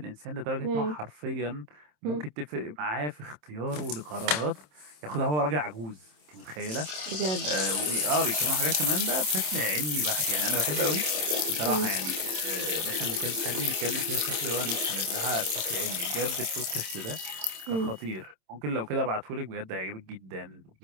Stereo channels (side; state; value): left; late; 27 ms